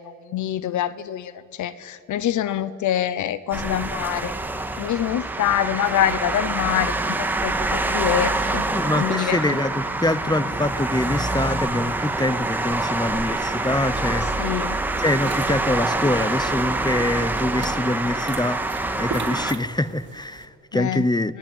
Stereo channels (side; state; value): both; normal; correlation 0.46